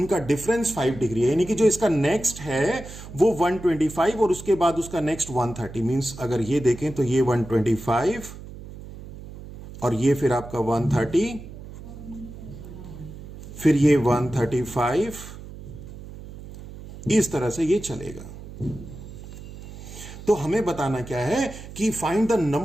डिफरेंस 5 डिग्री है, यानी कि जो इसका नेक्स्ट है वो 125 और उसके बाद उसका नेक्स्ट 130। मींस अगर ये देखें तो ये 125 और ये फिर आपका 130, फिर ये 135, इस तरह से ये चलेगा। तो हमें बताना क्या है कि find the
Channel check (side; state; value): right; noise; hum, 14 dB below the sound